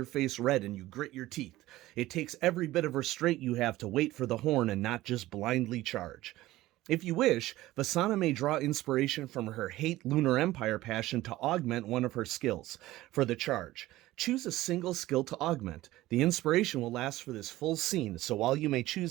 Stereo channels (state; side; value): quieter; left; 16.8 dB